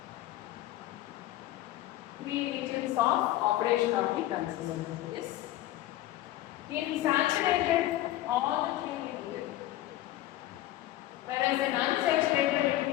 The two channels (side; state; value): right; quieter; 14.8 dB